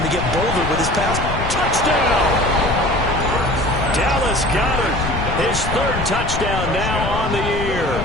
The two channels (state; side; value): noise; left; rumble, 4 dB below the sound